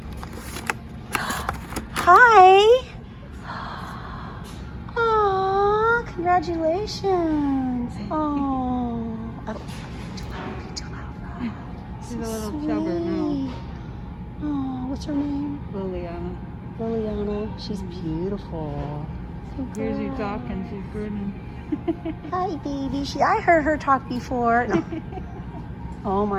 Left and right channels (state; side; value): identical; both; correlation 1.00